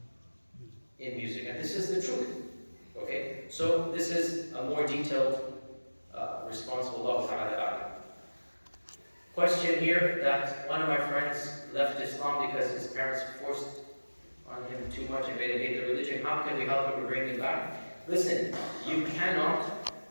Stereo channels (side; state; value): both; inverted; correlation -1.00